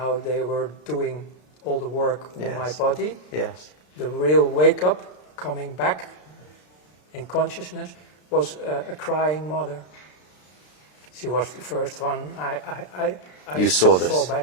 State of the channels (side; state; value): right; late; 33 ms